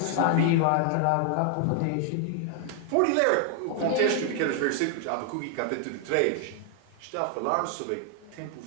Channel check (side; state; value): both; different; correlation 0.00